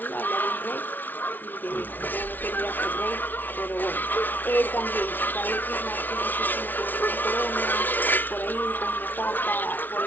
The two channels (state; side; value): late; right; 0.087 ms